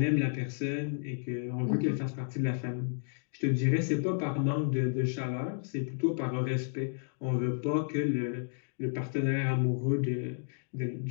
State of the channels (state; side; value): silent; right; digital silence